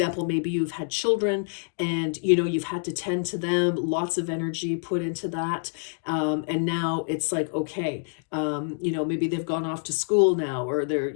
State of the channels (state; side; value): silent; right; digital silence